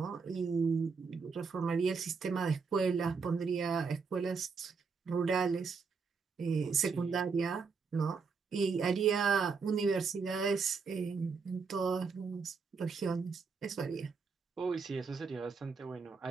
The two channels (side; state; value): left; quieter; 5.1 dB